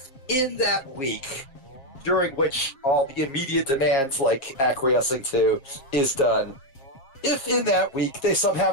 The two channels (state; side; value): late; right; 7.4 ms